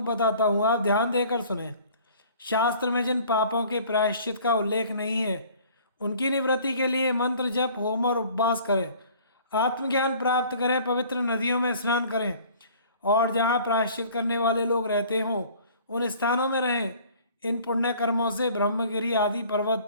बताता हूँ, आप ध्यान देकर सुने। शास्त्र में जिन पापों के प्रायश्चित का उल्लेख नहीं है, उनकी निवृत्ति के लिए मंत्र जप, होम और उपवास करें, आत्मज्ञान प्राप्त करें, पवित्र नदियों में स्नान करें और जहाँ प्रायश्चित करने वाले लोग रहते हों उन स्थानों में रहें। इन पुण्य कर्मों से ब्रह्मगिरी आदि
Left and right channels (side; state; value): both; inverted; correlation -0.51